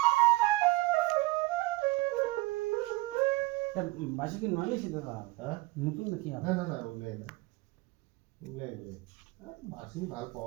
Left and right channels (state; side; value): quieter; left; 21.2 dB